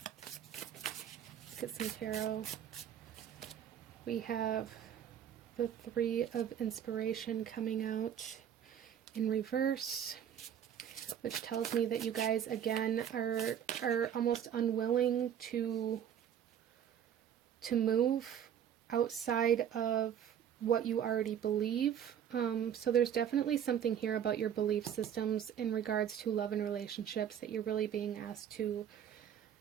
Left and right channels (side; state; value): left; quieter; 9.3 dB